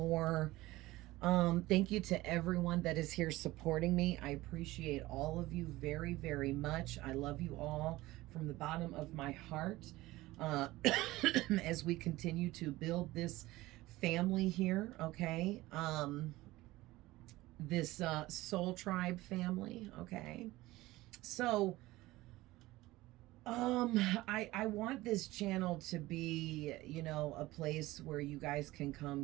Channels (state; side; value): quieter; left; 18.4 dB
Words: Thank you to everyone that is here supporting me. I appreciate all of you very, very much. I love you all from the bottom of my heart uh, as we continue to build this family here, okay? This soul tribe family, okay? So, I want this channel to be, a place where you guys can